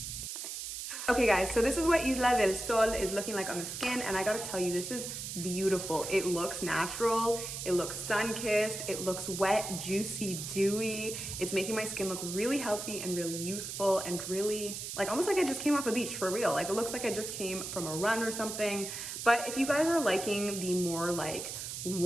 Okay guys, so this is what Isla del Sol is looking like on the skin, and I gotta tell you, this is beautiful. It looks natural, it looks sun-kissed, it looks wet, juicy, dewy. It's making my skin look really healthy and really youthful and really, like almost like I just came off a beach for real. Like it looks like I just came from a run or something. But if you guys are liking the more like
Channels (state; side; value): noise; right; hiss, 6 dB below the sound